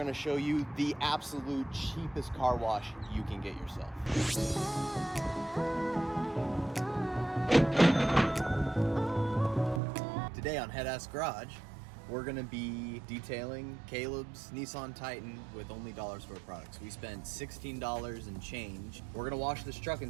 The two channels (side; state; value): left; drops out; at 9.8 s